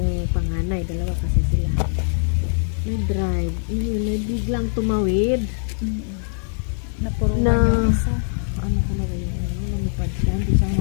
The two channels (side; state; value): right; silent; digital silence